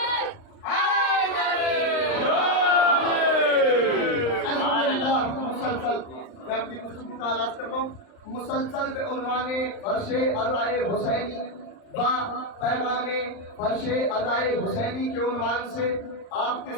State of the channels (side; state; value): right; late; 39 ms